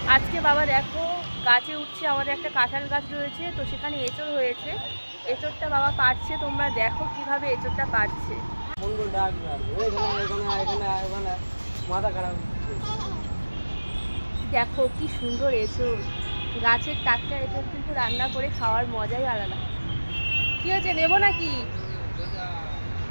আজকে বাবা দেখো গাছে উঠছে, আমাদের একটা কাঁঠাল গাছ রয়েছে, তো সেখানে এঁচড় হয়েছে। এঁচড়টা বাবা পাড়ছে, তোমরা দেখো কিভাবে এঁচড়টা পাড়ছে। দেখো কি সুন্দর এঁচড়, গাছের টাটকা এঁচড় কিন্তু রান্না করে খাওয়ার মজাই আলাদা। কি হয়েছে, নেবো নাকি?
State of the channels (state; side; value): inverted; both; correlation -1.00